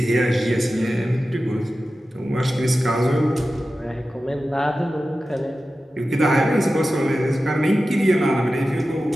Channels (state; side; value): normal; both; correlation 0.94